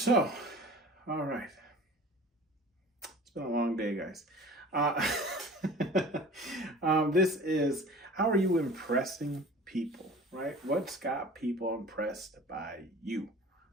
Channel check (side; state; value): both; normal; correlation 0.42